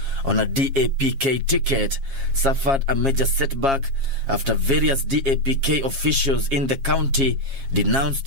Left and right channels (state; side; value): late; left; 7.4 ms